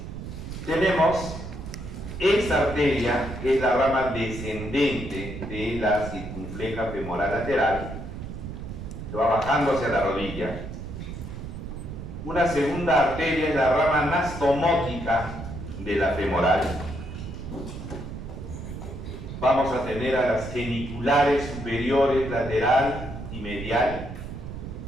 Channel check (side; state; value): right; noise; rumble, 9 dB below the sound